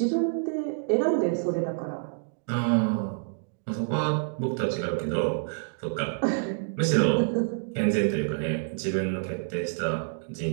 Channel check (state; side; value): silent; left; digital silence